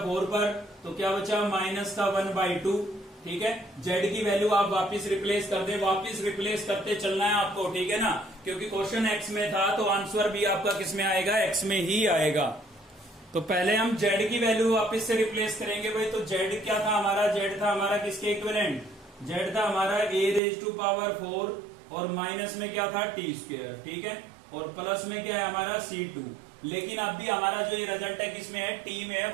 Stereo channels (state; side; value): drops out; left; at 20.4 s